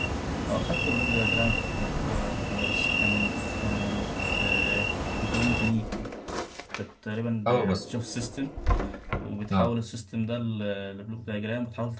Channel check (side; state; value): both; identical; correlation 1.00